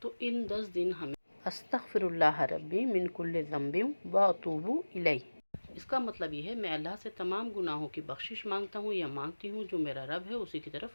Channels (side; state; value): both; inverted; correlation -1.00